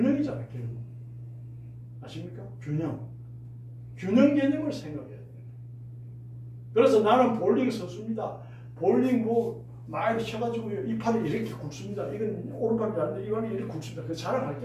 결국. 아십니까? 균형. 균형 개념을 생각해야 돼요. 그래서 나는 볼링 선수입니다. 볼링 많이 쳐가지고 이 팔이 이렇게 굵습니다. 이건 오른팔이 아닌데 이건 이렇게 굵습니다. 그 자랑할 게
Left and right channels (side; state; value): both; identical; correlation 1.00